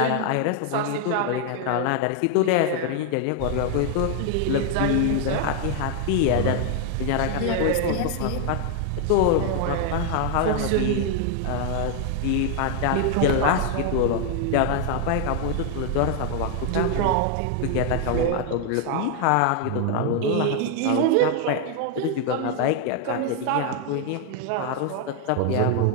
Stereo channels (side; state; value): both; different; correlation 0.00